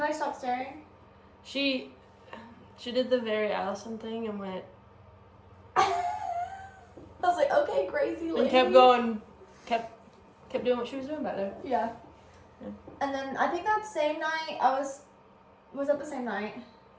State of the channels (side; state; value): both; identical; correlation 1.00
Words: stop staring? She did the very Allison thing and went, I was like, okay, crazy lady. and kept going, kept doing what she was doing back there. Yeah. Yeah. And then I think that same night, was that the same night?